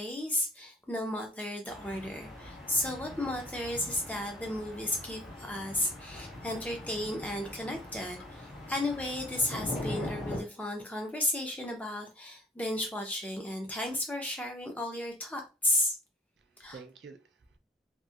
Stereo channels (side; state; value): both; normal; correlation 0.51